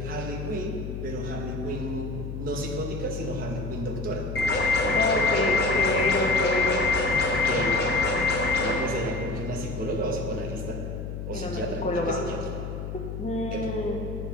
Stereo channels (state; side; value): noise; left; hum, 6 dB below the sound